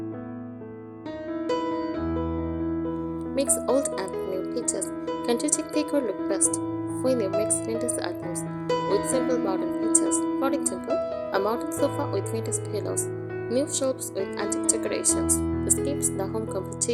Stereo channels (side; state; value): both; identical; correlation 1.00